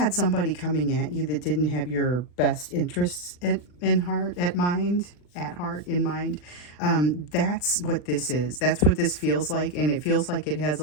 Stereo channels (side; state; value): right; late; 40 ms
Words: somebody coming at you that didn't have your best interests in heart, in mind. That's what this is. That's what this feels like. And it feels like it has